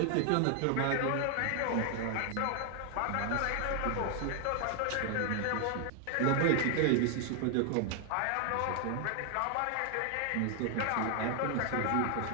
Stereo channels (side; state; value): both; different; correlation 0.00